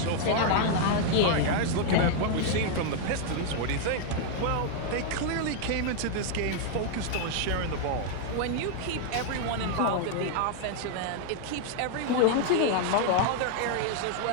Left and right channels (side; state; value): both; different; correlation 0.00